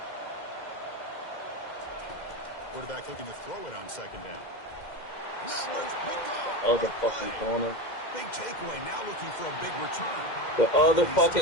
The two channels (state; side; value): late; right; 2.1 ms